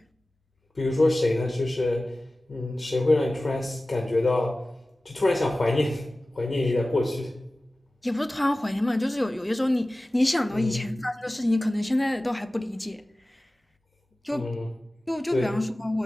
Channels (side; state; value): both; normal; correlation 0.97